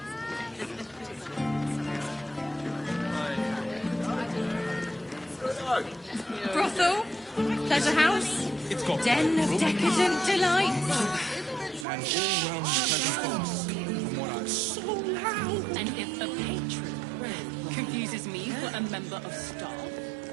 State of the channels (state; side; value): drops out; left; at 11.9 s